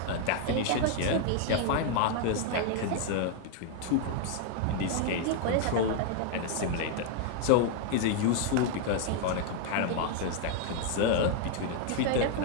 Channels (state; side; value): different; both; correlation 0.00